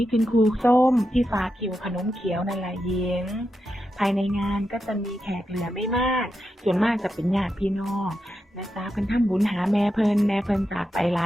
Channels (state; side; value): normal; both; correlation 0.87